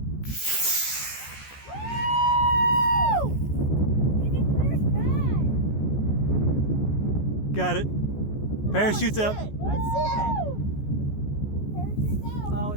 Got it. Parachute's out. Let's see it. Parachute's out. Oh,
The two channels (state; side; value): late; right; 14 ms